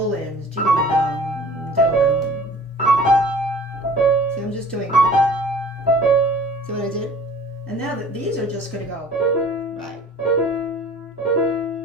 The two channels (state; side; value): normal; both; correlation 0.48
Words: See, I'm just doing. See what I did? And now that these are just going to go right.